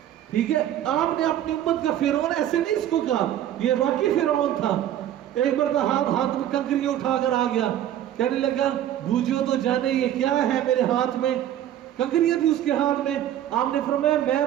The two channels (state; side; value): quieter; left; 11.6 dB